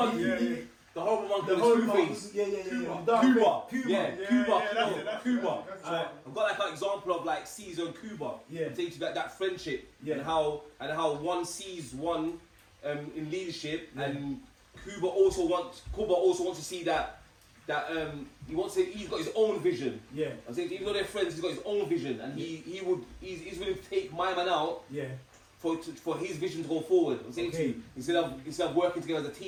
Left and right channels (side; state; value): both; identical; correlation 1.00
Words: Yeah. The horrible monkey. The horrible face. Yeah. Cuba. I've got like an example of like Caesar and Cuba. Yeah. Takes that friendship and how one sees one in leadership, and Cuba also wants to see that he's got his own vision. Yeah. I'm saying even though they're friends, he's got his own vision, and he's willing to take my man out. Yeah. For his vision to go forward. I'm saying to you, instead of working together as a